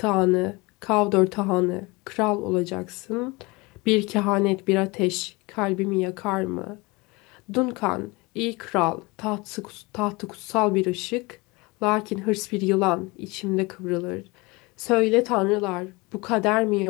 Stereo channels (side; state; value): right; quieter; 24.8 dB